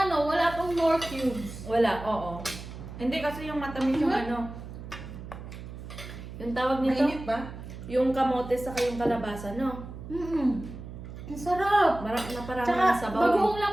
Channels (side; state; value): right; noise; hum, 11 dB below the sound